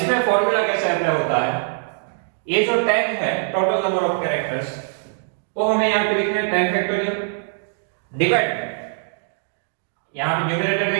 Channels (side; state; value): left; silent; digital silence